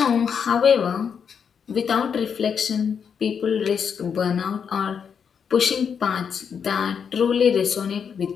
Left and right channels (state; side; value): quieter; right; 7.0 dB